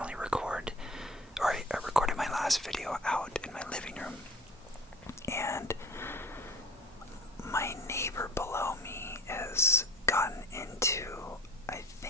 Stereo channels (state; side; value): normal; both; correlation 0.42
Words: record, or I recorded my last video out in my living room. And my neighbor below me has gotten into, I